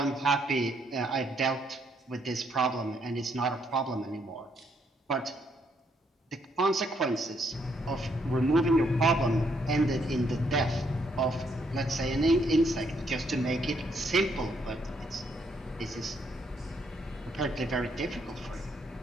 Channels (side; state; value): both; normal; correlation 0.72